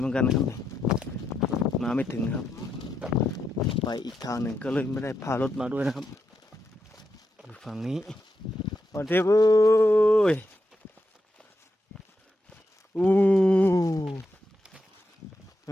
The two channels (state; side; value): normal; both; correlation 0.84